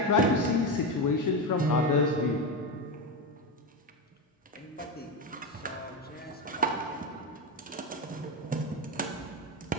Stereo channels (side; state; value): both; normal; correlation 0.15